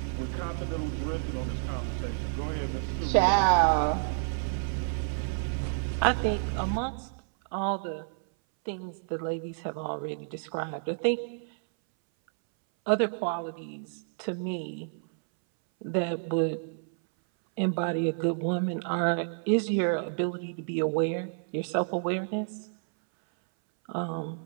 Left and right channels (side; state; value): left; silent; 58 dB below the other